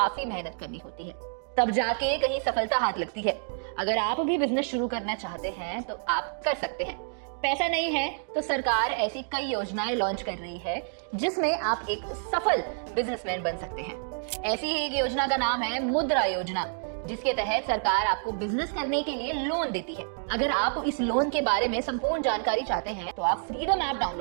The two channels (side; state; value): left; silent; 59 dB below the other